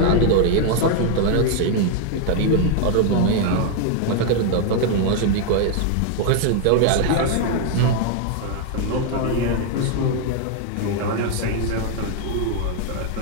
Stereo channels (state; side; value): different; both; correlation 0.00